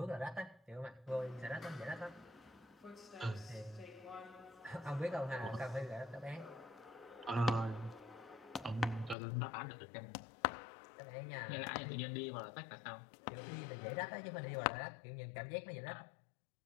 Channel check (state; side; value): drops out; right; at 9.2 s